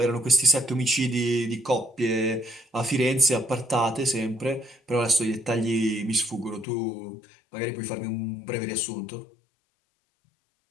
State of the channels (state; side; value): drops out; right; at 6.7 s